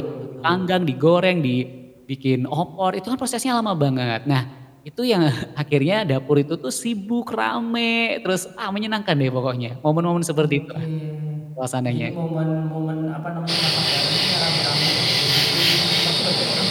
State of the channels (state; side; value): identical; both; correlation 1.00